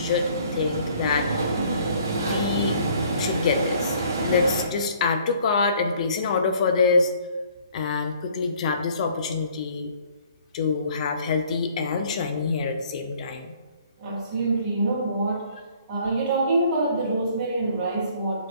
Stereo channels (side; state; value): both; inverted; correlation -0.58